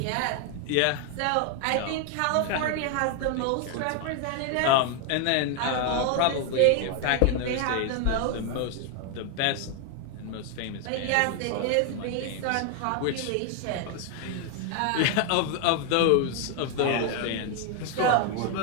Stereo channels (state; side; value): different; both; correlation 0.00